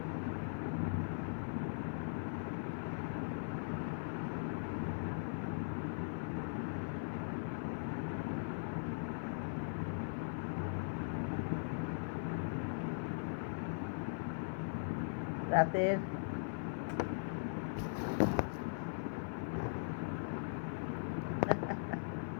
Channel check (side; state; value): right; silent; 51 dB below the other